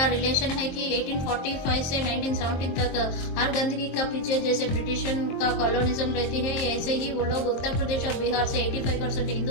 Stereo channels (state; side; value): late; right; 23 ms